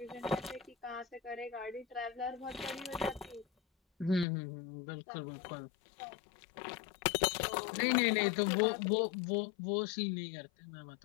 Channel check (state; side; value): drops out; right; at 4.2 s